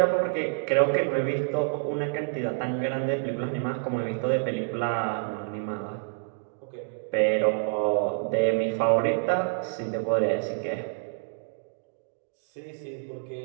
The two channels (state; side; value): silent; left; digital silence